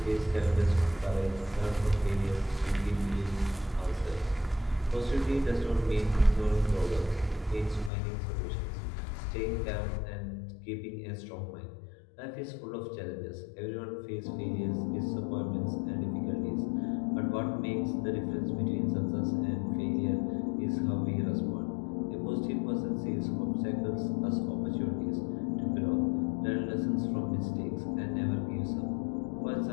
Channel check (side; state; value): right; drops out; at 7.9 s